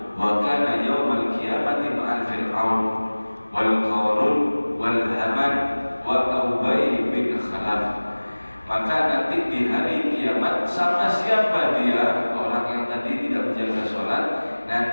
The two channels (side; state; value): both; inverted; correlation -1.00